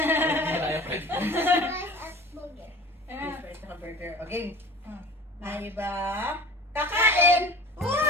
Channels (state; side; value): normal; both; correlation 0.41